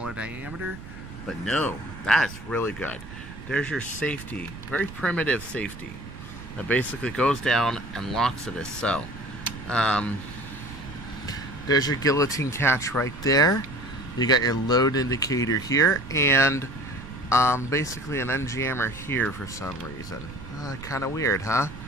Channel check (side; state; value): right; noise; rumble, 13 dB below the sound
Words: diameter, but no, that's really good. There's your safety, very primitive safety, that basically goes down and locks it as so. There's your guillotine catch right there. You got your load indicator here, and basically an unjammer here for some reason. Kind of weird, huh?